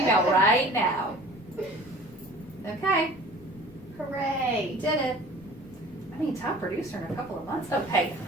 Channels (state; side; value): noise; left; rumble, 23 dB below the sound